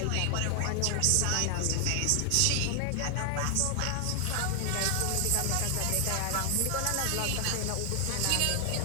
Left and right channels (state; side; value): different; both; correlation 0.00